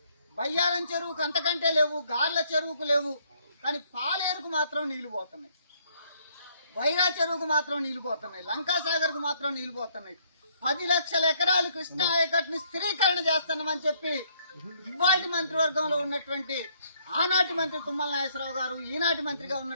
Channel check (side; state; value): both; inverted; correlation -0.67